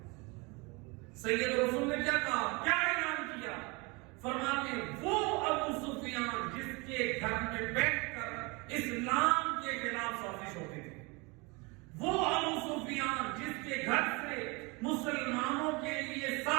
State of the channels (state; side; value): quieter; left; 27.6 dB